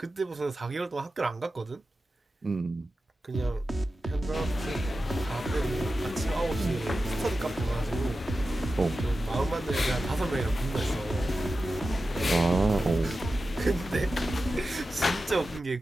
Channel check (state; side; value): normal; both; correlation 0.93